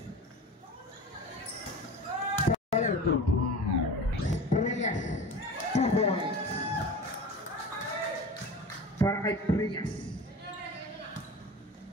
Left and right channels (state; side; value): normal; both; correlation 0.34